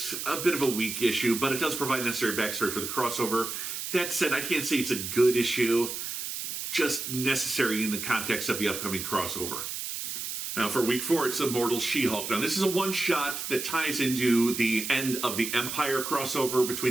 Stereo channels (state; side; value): noise; right; hiss, 5 dB below the sound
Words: a bit of a weak issue, but it does provide necessary backstory for the crossover. That said, I can't say it's a good issue, just necessary in the context of the upcoming crossover. Now, for week 4, it's Immortal She-Hulk. Now, this is a one-shot that ties into the end of the Empire crossover